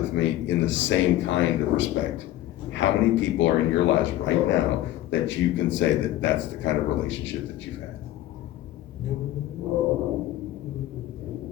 me in the same kind of respect. How many people are in your lives right now that you can say that that's the kind of relationship that you've had?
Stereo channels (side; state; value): right; quieter; 14.3 dB